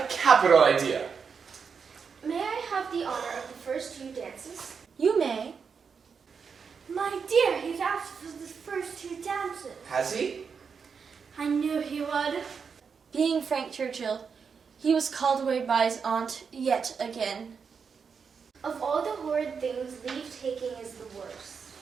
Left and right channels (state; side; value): quieter; left; 6.0 dB